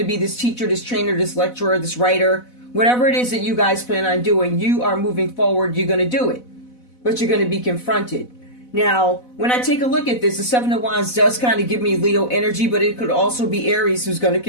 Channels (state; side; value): late; right; 4.0 ms